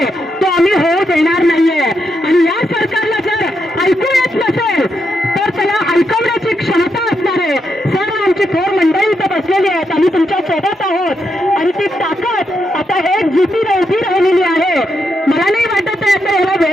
तो आम्ही होऊ देणार नाहीये। आणि या सरकारला जर ऐकू येत नसेल तर त्याला ऐकवण्याची क्षमता असणार आहे। सर्व आमची थोर मंडळी इथं बसलेली आहेत, आम्ही तुमच्या सोबत आहोत आणि ती ताकद आता एक जुटीने उभी राहिलेली आहे। मला नाही वाटत आहे आता याला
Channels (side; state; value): both; normal; correlation 0.82